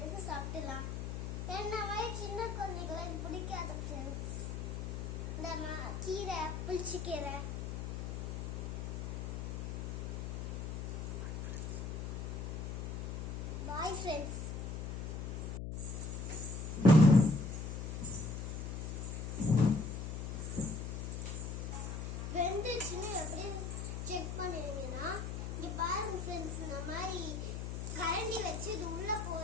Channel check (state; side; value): noise; left; hum, 4 dB below the sound